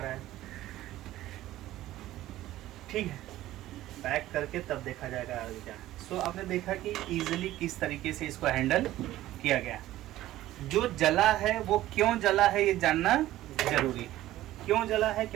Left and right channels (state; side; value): quieter; left; 14.9 dB